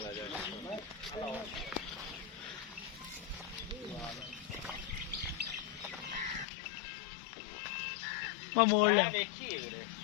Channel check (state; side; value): drops out; right; at 6.5 s